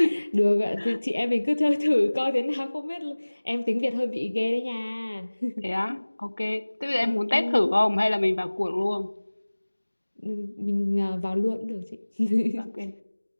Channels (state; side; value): inverted; both; correlation -1.00